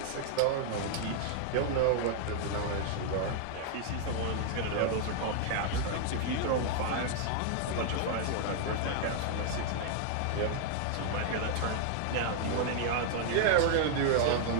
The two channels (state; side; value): different; both; correlation 0.00